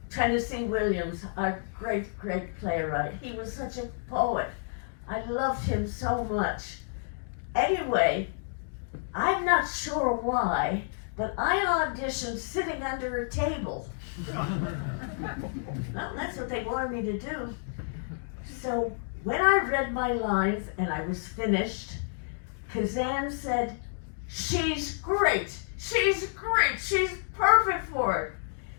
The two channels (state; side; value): silent; right; digital silence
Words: Tennessee Williams, our great playwright. He was such a poet. I loved him so much. Anyway, I'm not sure why, but I auditioned sitting under a table. Well, that's what they wanted me to do. So when I read my lines and I was finished, Kazan said, "She's great, she's great, she's perfect for it.